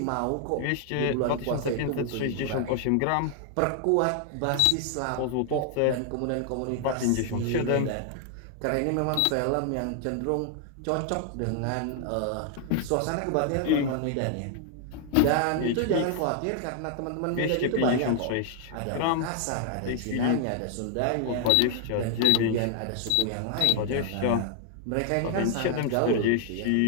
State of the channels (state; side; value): different; both; correlation 0.00